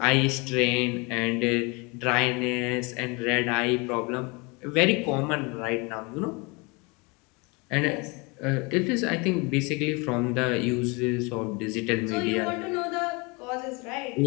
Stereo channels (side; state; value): right; quieter; 28.6 dB